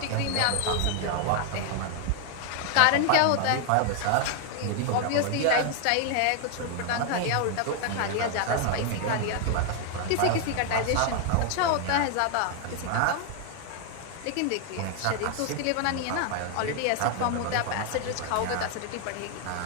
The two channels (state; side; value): different; both; correlation 0.00